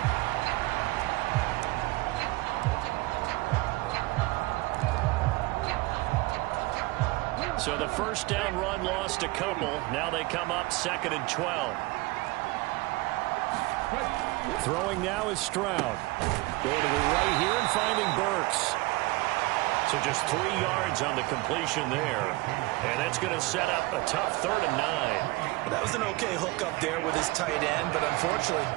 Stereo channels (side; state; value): left; quieter; 22.4 dB